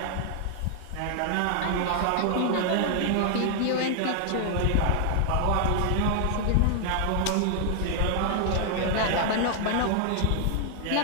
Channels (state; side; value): different; both; correlation 0.00